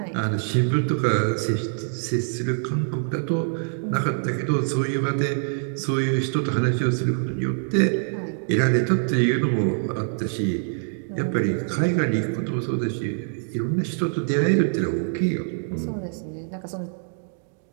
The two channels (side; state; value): left; silent; digital silence